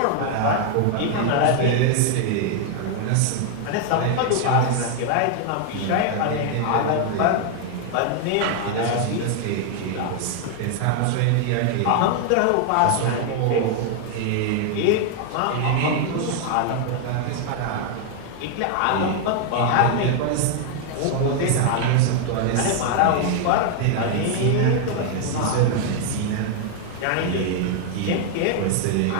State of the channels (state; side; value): different; both; correlation 0.00